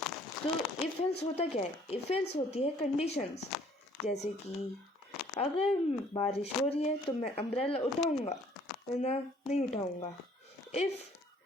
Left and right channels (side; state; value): both; normal; correlation 0.59